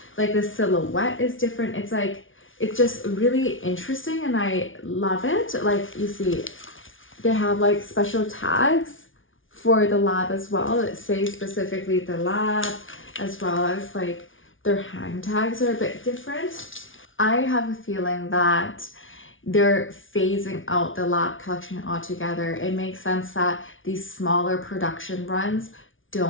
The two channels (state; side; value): late; right; 0.57 ms